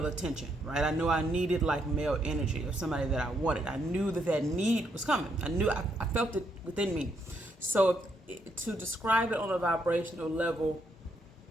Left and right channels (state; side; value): normal; both; correlation 0.75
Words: attention, right? I knew I needed like male energy or somebody that I wanted. I knew that need was coming. I felt it within me. So to describe it on a vibrational level,